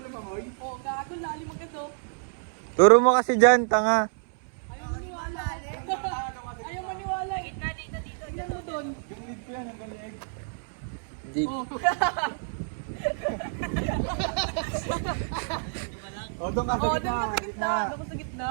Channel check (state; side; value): silent; left; 59 dB below the other